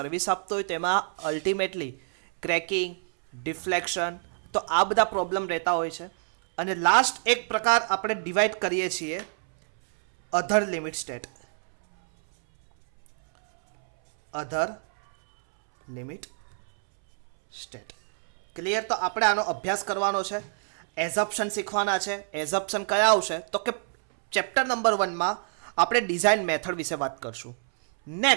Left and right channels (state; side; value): silent; left; 60 dB below the other